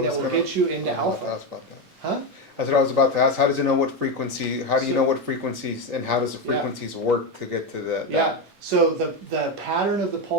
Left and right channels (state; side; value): late; left; 7.2 ms